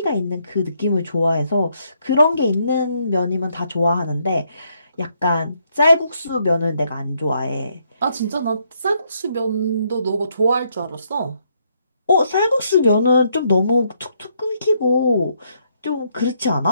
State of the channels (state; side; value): inverted; both; correlation -0.74